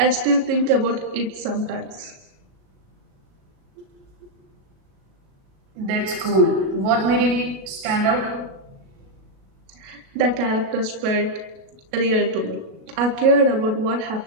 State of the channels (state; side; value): late; left; 37 ms